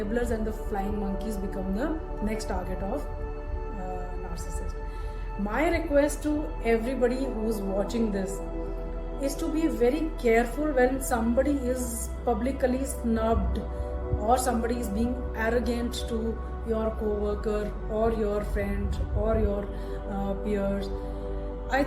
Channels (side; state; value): both; identical; correlation 1.00